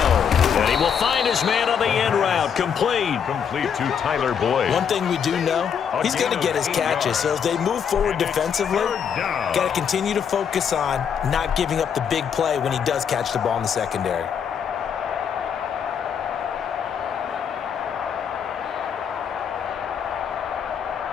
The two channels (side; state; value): right; quieter; 7.5 dB